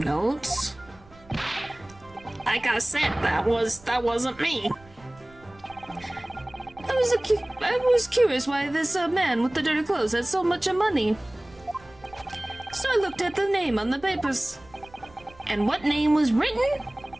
Like I said, that wasn't me. I was curious why this man with the dirty clothes had so much money. So I looked at the name on the papers. And what name was written?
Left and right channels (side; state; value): right; noise; rumble, 25 dB below the sound